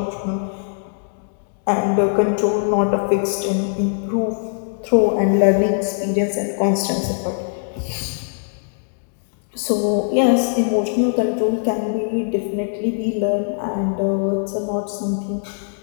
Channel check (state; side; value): silent; right; digital silence